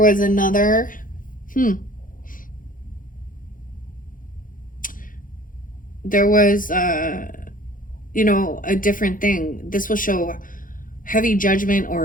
another there was you know, a different thing. This will show heavy judgment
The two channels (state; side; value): late; right; 0.39 ms